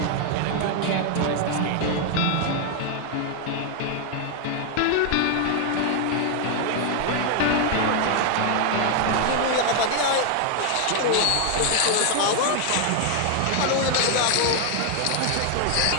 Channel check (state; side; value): different; both; correlation 0.00